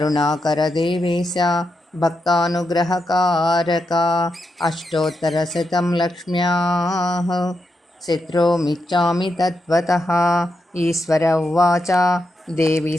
भक्तानुग्रहकारक अष्टोत्तरशतं लक्ष्म्याः स्तोत्रमिच्छामि तत्त्वतः। ईश्वर उवाच देवी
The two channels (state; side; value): normal; both; correlation 0.85